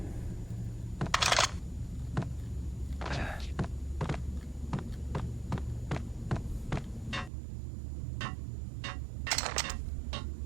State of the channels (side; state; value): left; drops out; at 7.3 s